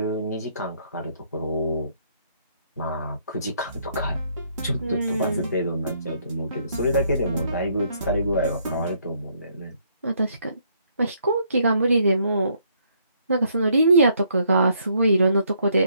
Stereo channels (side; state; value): both; inverted; correlation -0.69